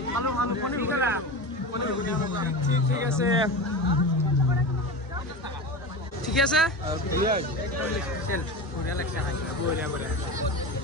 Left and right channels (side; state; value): both; normal; correlation 0.26